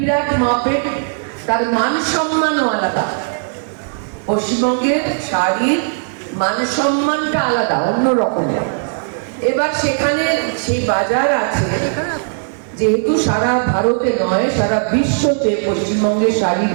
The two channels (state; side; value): silent; left; digital silence